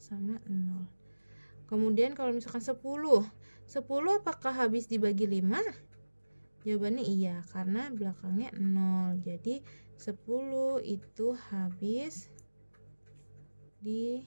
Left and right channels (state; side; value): inverted; both; correlation -1.00